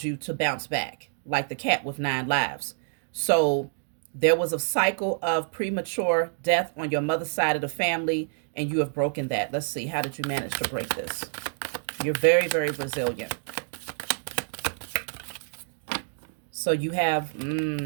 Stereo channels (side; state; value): left; silent; digital silence